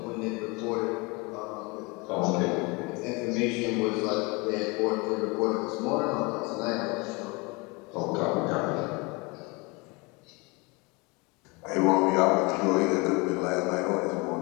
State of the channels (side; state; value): right; quieter; 27.4 dB